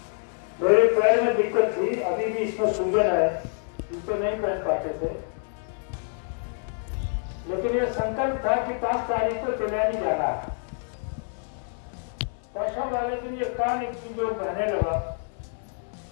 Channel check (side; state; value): right; silent; 60 dB below the other